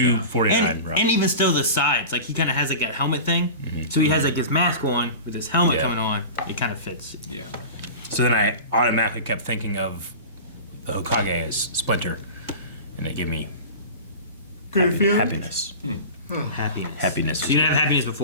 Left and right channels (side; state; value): both; inverted; correlation -0.33